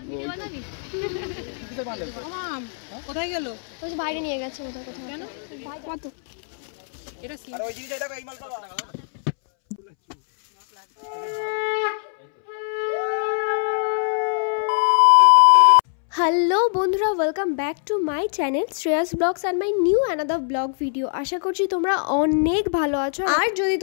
কোথায় গেল? ওই যে বাইরে নিয়ে গেছে কোথায় কোথায়। কেন? তো এটা আর ওই জিনিসটা দেখো, এই মাল পাবা। হ্যালো বন্ধুরা, welcome back to my channel Shreyas vlogs and my new another vlog video. আশা করছি তোমরা অনেক ভালো আছো। আর যদি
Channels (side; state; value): right; silent; 64 dB below the other